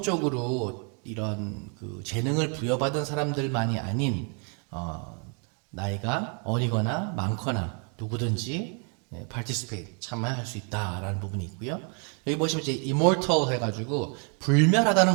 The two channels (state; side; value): quieter; left; 38.3 dB